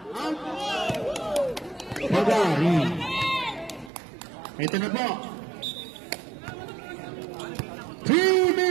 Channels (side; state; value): left; drops out; at 3.9 s